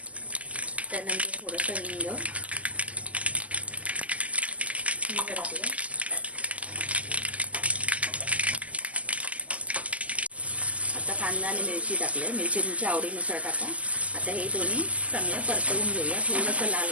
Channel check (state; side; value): late; left; 0.069 ms